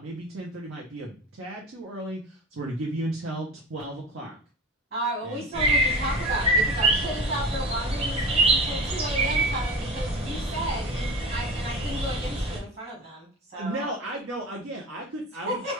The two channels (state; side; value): normal; both; correlation 0.31